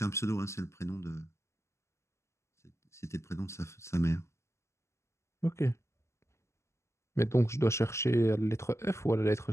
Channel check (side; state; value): right; late; 0.13 ms